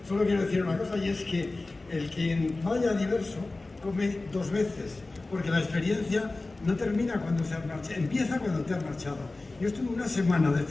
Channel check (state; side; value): quieter; right; 3.2 dB